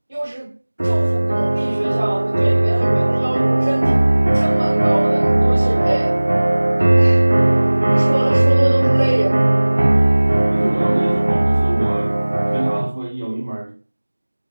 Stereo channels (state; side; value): inverted; both; correlation -1.00